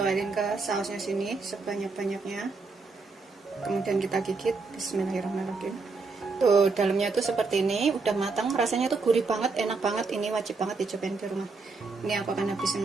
ke sausnya sini sebanyak-banyaknya. Kemudian kita gigit. Bismillahirrahmanirrahim. Tuh dalamnya tuh seperti ini, udah matang, rasanya tuh gurih banget, enak banget. Ini wajib banget dicobain di rumah. Ini aku akan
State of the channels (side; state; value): left; quieter; 4.2 dB